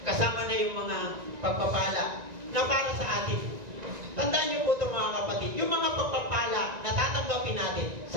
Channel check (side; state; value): left; late; 1.9 ms